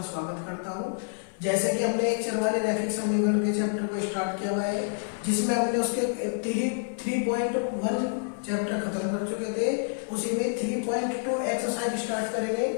स्वागत करता हूं। जैसे कि हमने एक चरवाले रैखिक समीकरण के चैप्टर को स्टार्ट किया हुआ है, जिसमें हमने उसके 3.1 चैप्टर खत्म कर चुके थे। उसी में 3.2 एक्सरसाइज स्टार्ट करेंगे।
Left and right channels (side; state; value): right; silent; 59 dB below the other